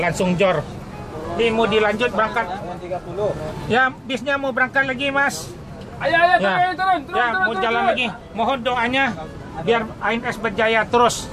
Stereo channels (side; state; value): both; identical; correlation 1.00